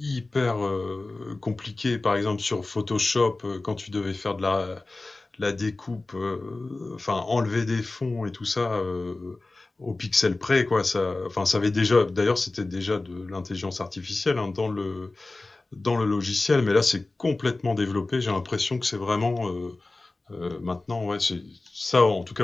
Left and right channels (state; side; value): quieter; right; 3.2 dB